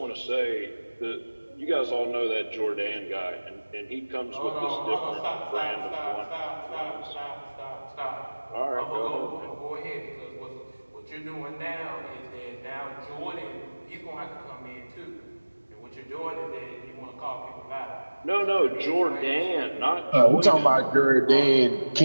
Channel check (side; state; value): both; inverted; correlation -1.00